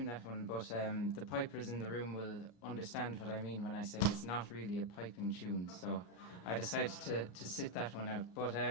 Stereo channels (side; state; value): right; late; 34 ms